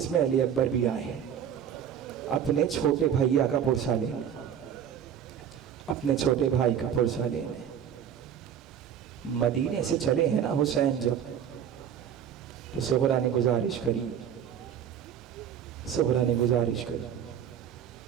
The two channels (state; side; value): quieter; left; 8.9 dB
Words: में अली अकबर भी आए हैं अपने छोटे भैया का पुरसा लेने, अपने छोटे भाई का पुरसा लेने। मदीने से चले हैं ना हुसैन जब, तो सुहरा ने गुजारिश करी, सुहरा ने गुजारिश करी,